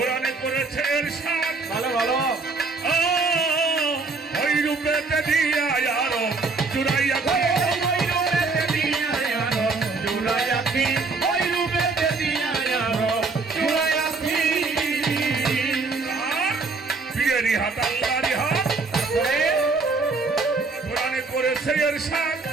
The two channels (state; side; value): quieter; left; 4.0 dB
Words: করেছে ইরশাদ ভালো ভালো ওই রূপেতে দিয়া আরো জুড়াইয়া ওই রূপেতে দিয়া আরো জুড়াইয়াছি ওই রূপেতে দিয়া আরো জুড়াইয়াছি পীরেরই হাত আল্লাহরই হাত কোরআনে করেছে ইরশাদ